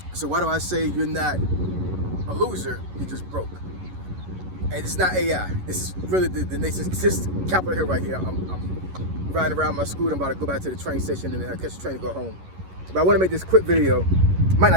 So why do I say you're not a loser, you're just broke? And it's not AI. This is really the nation's Capitol Hill right here. I'm riding around my scooter. I'm about to go back to the train station and then I'll catch the train to go home. But I want to make this quick video. It might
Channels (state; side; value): late; left; 11 ms